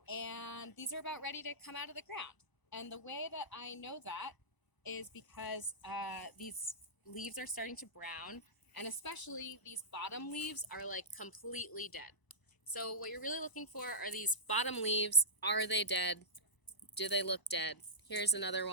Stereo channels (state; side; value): late; right; 1.0 ms